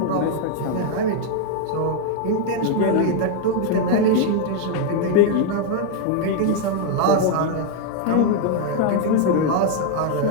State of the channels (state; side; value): different; both; correlation 0.00